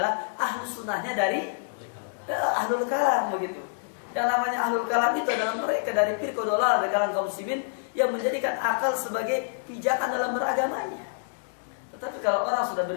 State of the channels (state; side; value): silent; right; digital silence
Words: ahli sunnahnya dari ahlul kalam begitu. Yang namanya ahlul kalam itu adalah mereka dari firqah dolah, dari kalangan kaum muslimin yang menjadikan akal sebagai pijakan dalam beragamanya. Tetapi kalau orang sudah